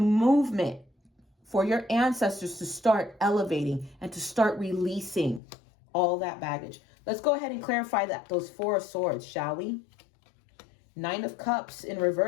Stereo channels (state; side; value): drops out; right; at 5.4 s